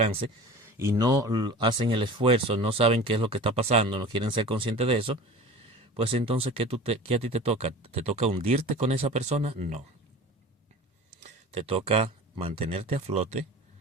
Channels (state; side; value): normal; both; correlation 0.38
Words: y no hacen el esfuerzo, no saben qué es lo que está pasando, no quieren ser conscientes de eso, pues entonces, ¿qué a ti te toca? ¿Te toca hundirte con esa persona? No. Te toca mantenerte a flote.